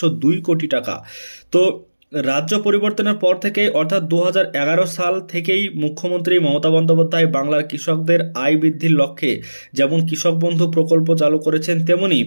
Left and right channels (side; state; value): both; inverted; correlation -1.00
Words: কোটি টাকা। তো রাজ্য পরিবর্তনের পর থেকে অর্থাৎ 2011 সাল থেকেই মুখ্যমন্ত্রী মমতা বন্দ্যোপাধ্যায় বাংলার কৃষকদের আয় বৃদ্ধির লক্ষ্যে যেমন কৃষক বন্ধু প্রকল্প চালু করেছেন, তেমনি